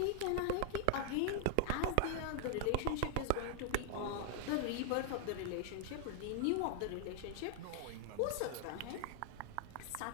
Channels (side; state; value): both; different; correlation 0.00